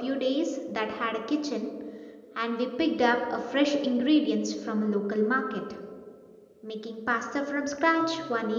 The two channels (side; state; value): both; identical; correlation 1.00